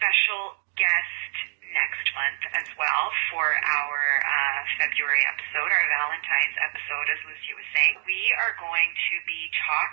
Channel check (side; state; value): left; silent; digital silence